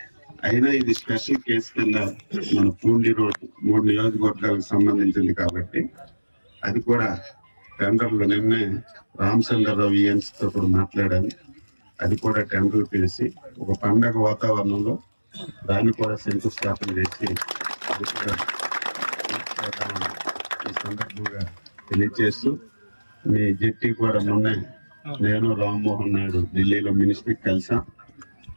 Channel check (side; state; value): both; inverted; correlation -1.00